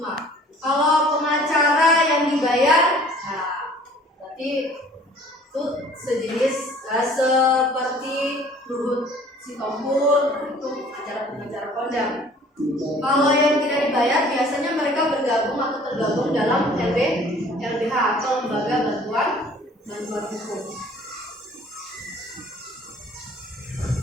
Kalau pengacara yang dibayar, nah berarti itu sejenis seperti Luhut Sitompul, itu pengacara kondang. Kalau yang tidak dibayar, biasanya mereka bergabung atau tergabung dalam LBH atau lembaga bantuan hukum.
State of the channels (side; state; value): both; normal; correlation 0.52